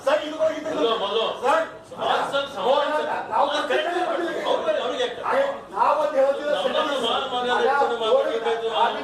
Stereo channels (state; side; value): identical; both; correlation 1.00